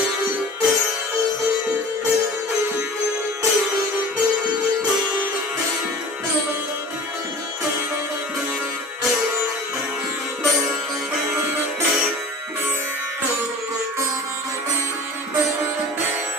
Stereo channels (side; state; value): both; normal; correlation 0.40